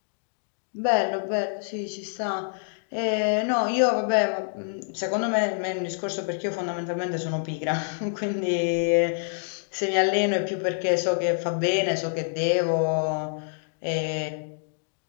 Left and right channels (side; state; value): right; silent; digital silence